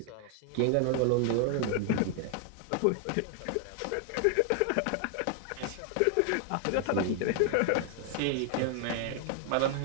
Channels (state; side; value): different; both; correlation 0.00